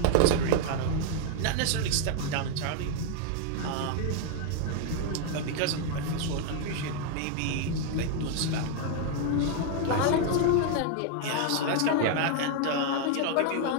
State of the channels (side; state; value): both; different; correlation 0.00